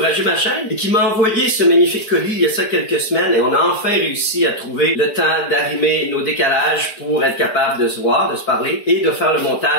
ma chaîne et qui m'a envoyé ce magnifique colis il y a ça quelques semaines et on a enfin réussi à trouver le temps d'arrimer nos décalages pour être capable de se voir, de se parler et de faire le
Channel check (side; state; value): right; late; 4.6 ms